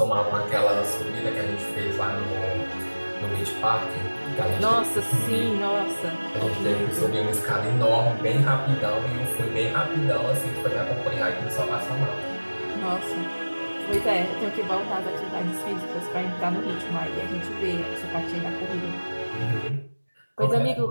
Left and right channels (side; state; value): both; inverted; correlation -1.00